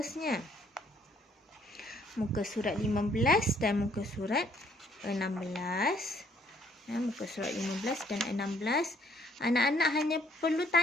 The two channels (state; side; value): normal; both; correlation 0.65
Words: muka surat 15 dan muka surat 16. Muka surat 15 dan 16. Anak-anak hanya perlu